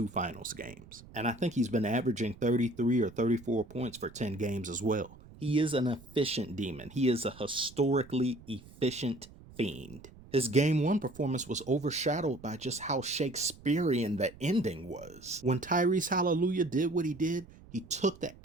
finals games. And I think he's been averaging 33 or 34 points for 10 games as well. He is an efficient demon. He is a historically efficient fiend. His game 1 performance was overshadowed by just how Shakespearean the ending was. When Tyrese Hallelujah did what he did, he took the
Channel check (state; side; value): noise; right; rumble, 21 dB below the sound